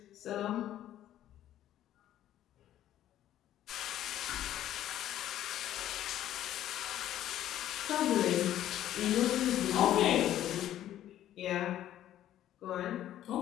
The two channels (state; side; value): quieter; right; 12.3 dB